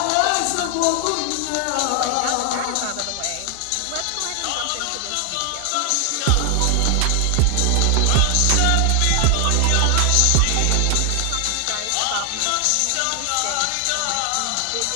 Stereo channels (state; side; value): different; both; correlation 0.00